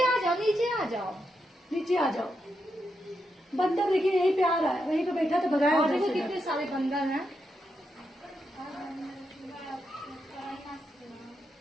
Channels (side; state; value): both; normal; correlation 0.84